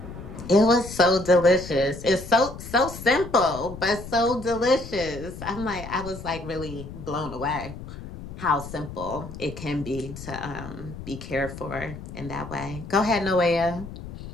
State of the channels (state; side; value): noise; left; rumble, 12 dB below the sound